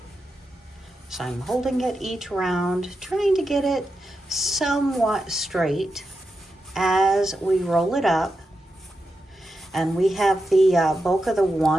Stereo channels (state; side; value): normal; both; correlation 0.88